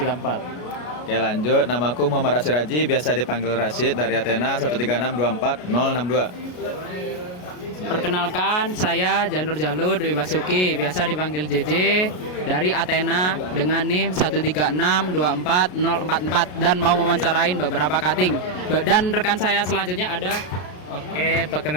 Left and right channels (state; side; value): late; right; 33 ms